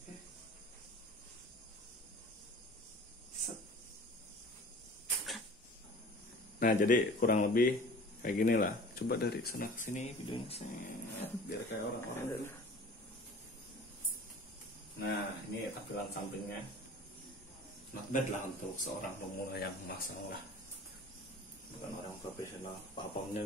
Nah jadi kurang lebih kayak gini lah. Coba dari sana ke sini videonya biar kayak orang-orang dulu. Nah ini tampilan sampingnya. Not bad lah untuk seorang pemula yang masang lah. Bukan orang profesional. Papannya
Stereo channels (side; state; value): both; normal; correlation 0.43